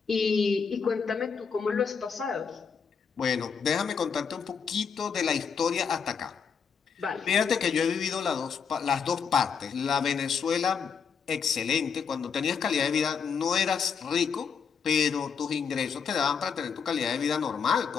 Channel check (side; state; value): right; quieter; 6.3 dB